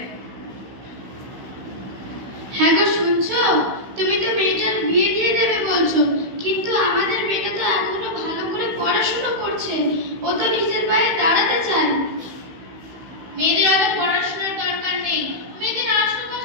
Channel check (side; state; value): left; late; 16 ms